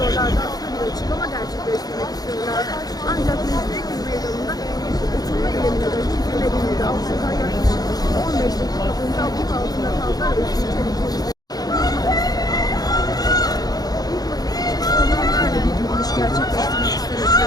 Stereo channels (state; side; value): late; right; 0.19 ms